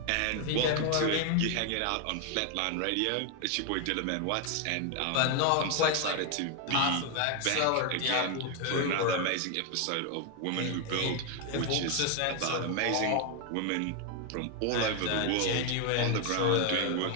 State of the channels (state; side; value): different; both; correlation 0.01